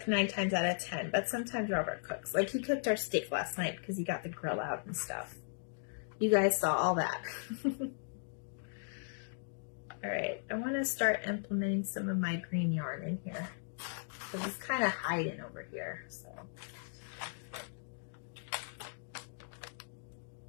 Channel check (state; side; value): silent; right; digital silence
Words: 9 times out of 10, but sometimes Robert cooks. Like he cooked our steak last night because he got the grill out and stuff. You guys saw all that. All right, I want to start implementing some of my green yarn in here because it's kind of hiding over here. So